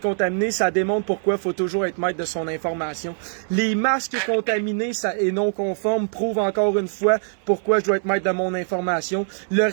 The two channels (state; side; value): silent; left; digital silence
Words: ça démontre pourquoi il faut toujours être maître de son information. Les masques contaminés et non conformes prouvent encore une fois pourquoi je dois être maître de mon information. Le